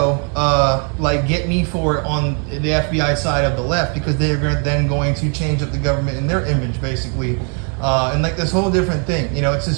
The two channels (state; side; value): quieter; left; 39.3 dB